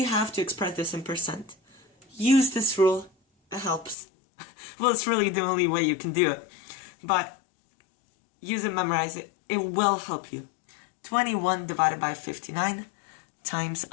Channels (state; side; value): drops out; right; at 4.0 s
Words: have to express this in percent. Use this rule, it helps. Well, it's really the only way you can do it. But use it, memorize it, it will help you. 21 divided by 59 times